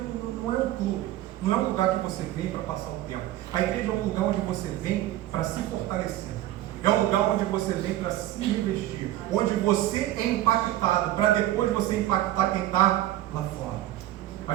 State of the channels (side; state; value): left; quieter; 14.4 dB